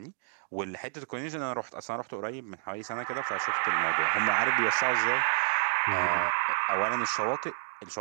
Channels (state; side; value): silent; left; digital silence